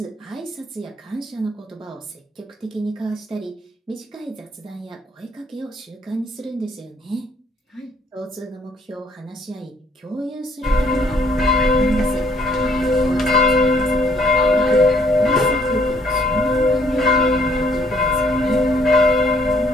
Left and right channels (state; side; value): normal; both; correlation 0.65